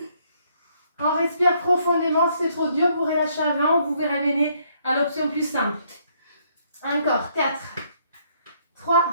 On respire profondément. Si c'est trop dur, vous relâchez avant. Vous pouvez ramener à l'option plus simple. Encore, 4, 3,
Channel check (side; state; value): both; inverted; correlation -0.68